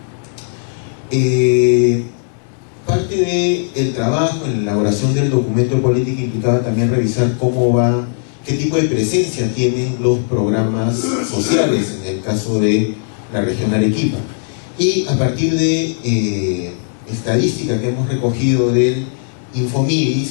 Parte del trabajo en la elaboración del documento de política implicaba también revisar qué tipo de presencia tienen los programas sociales en el caso de la región Arequipa. Y a partir de estadística que hemos recogido del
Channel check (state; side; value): silent; right; 63 dB below the other